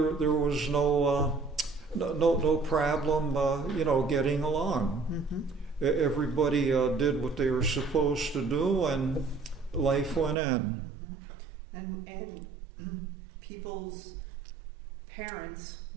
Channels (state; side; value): drops out; left; at 10.4 s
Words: was no problem, getting along. Mm-hmm. Everybody did what they were supposed to do, and life went on. Mm-hmm. And people's parents